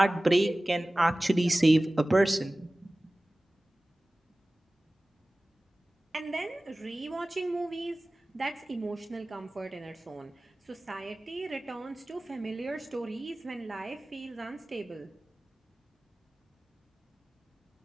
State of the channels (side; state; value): both; normal; correlation 0.98